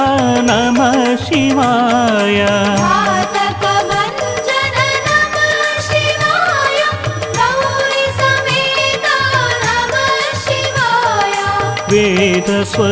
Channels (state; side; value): identical; both; correlation 1.00